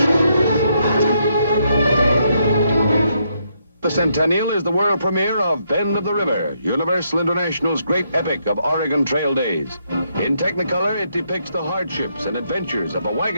The Centennial is the world premiere of Bend of the River, Universal International's great epic of Oregon Trail days. In Technicolor, it depicts the hardships and adventures of a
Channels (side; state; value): both; inverted; correlation -0.76